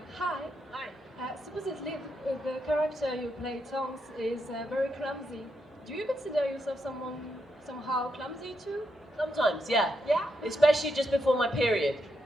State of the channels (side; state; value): both; normal; correlation 0.82